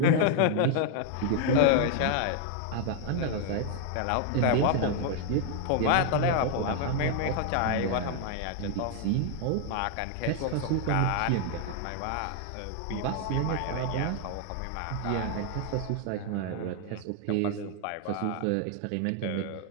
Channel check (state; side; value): different; both; correlation 0.00